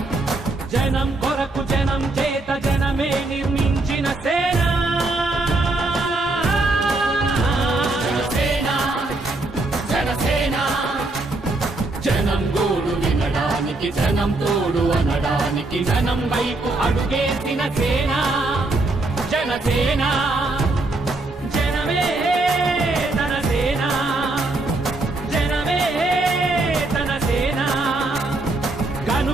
జనం కొరకు జనం చేత జనమే నిర్మించిన సేన జనసేన జనసేన జనం గోడు వినడానికి జనం తోడు అనడానికి జనం వైపు అడుగేసిన సేన జనసేన జనమే తన సేన జనమే తన సేన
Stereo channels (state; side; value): quieter; left; 3.0 dB